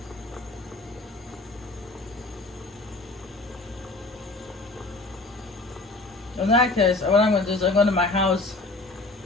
In that case, what I'm gonna do is I'm going to my house,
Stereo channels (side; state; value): right; quieter; 3.2 dB